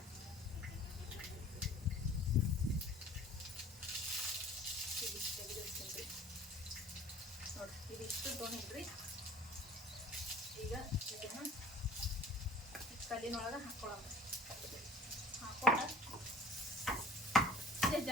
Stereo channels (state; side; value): normal; both; correlation 0.46